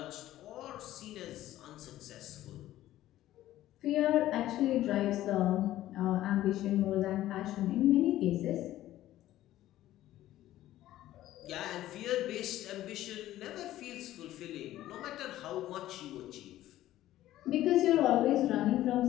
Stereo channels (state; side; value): quieter; right; 14.2 dB